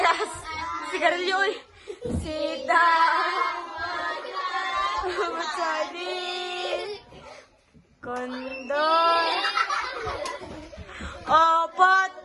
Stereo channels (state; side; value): identical; both; correlation 1.00